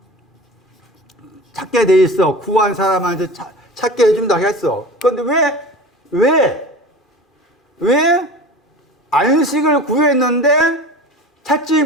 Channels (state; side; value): normal; both; correlation 0.35